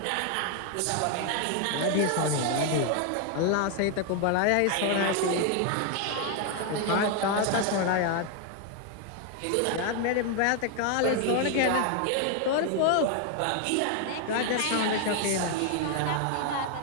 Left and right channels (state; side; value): different; both; correlation 0.00